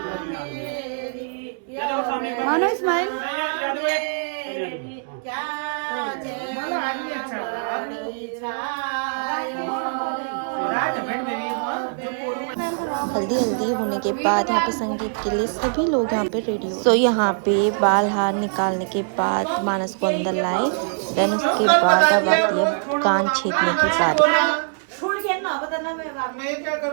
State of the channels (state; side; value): silent; left; digital silence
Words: मानो स्माइल हल्दी हल्दी होने के बाद यहाँ पे संगीत के लिए सभी लोग यहाँ पे रेडी हो। सो यहाँ पे बाल हार निकालने के बाद मानस को अंदर लाए। देन उसके बाद अब आती है कान छेदने की बारी। मैं क्या